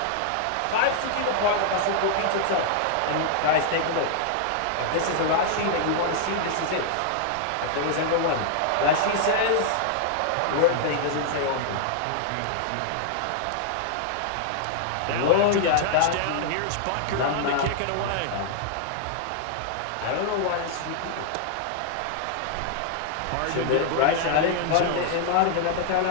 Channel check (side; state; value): both; different; correlation -0.01